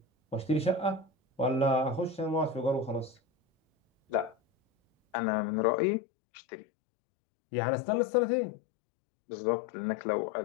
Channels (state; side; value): drops out; right; at 5.2 s